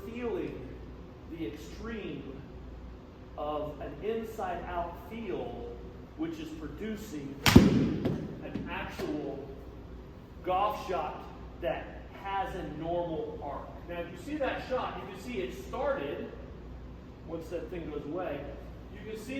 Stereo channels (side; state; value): both; identical; correlation 1.00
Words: feeling the extreme of an inside-out feel, which is producing an actual golf shot that has a normal arc. Now, if you see that shot, you can see it started, once that thing goes away, you can see